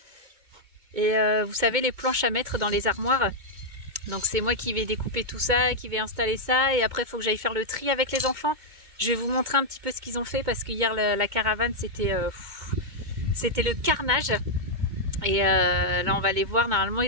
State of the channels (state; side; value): late; left; 2.2 ms